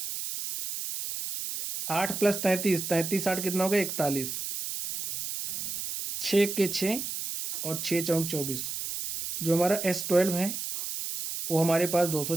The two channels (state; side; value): noise; right; hiss, 5 dB below the sound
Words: 8 + 33, 33 8 कितना हो गया? 41। 6 के 6 और 6 × 4 = 24। जो हमारा S12 है वो हमारे पास